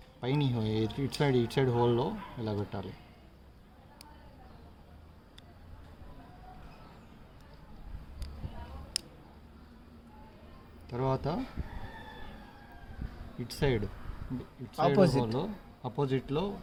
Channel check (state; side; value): identical; both; correlation 1.00